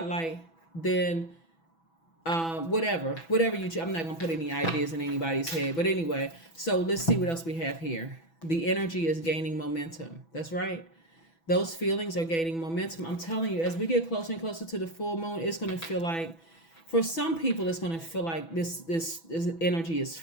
then whatever you, I'm not going to put any ideas in anybody's head. But anyway, so let's see what else we have here. The energy is gaining momentum. That's right. Those feelings are gaining momentum. I'm telling you, as we get closer and closer to the full moon, it's going to feel like, for some people, it's going to feel like this energy is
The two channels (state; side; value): late; right; 6.1 ms